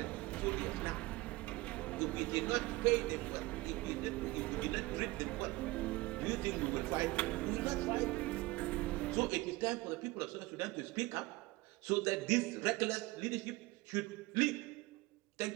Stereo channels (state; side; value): quieter; left; 21.2 dB